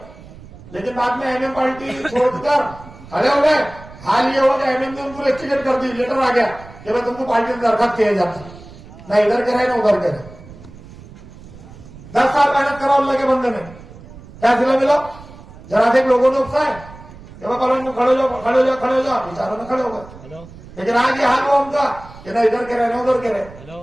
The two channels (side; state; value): right; noise; rumble, 18 dB below the sound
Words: लेकिन बाद में एमएम पार्टी छोड़कर खड़े हो गए। हाल ये हो गया एमएम ने उनको टिकट कर दी, लेटर आ गया कि भाई तुमको पार्टी में दरखास्त किया जाता, ना इधर के रहे ना उधर के रहे। 10 साल मेहनत करा अल्लाह के बंदे ने, क्या सिला मिला? जरा से लोगों ने उकसाए कि भाई कॉलोनी में खड़े हो जाओ, खड़े हो जाओ, खड़े हो जाओ, बेचारों में खड़े हो गए। लेकिन आज ये हाल हुआ उनका कि ना इधर के रहे ना उधर के